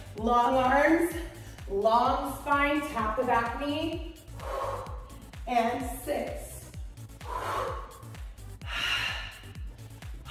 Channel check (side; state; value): both; identical; correlation 1.00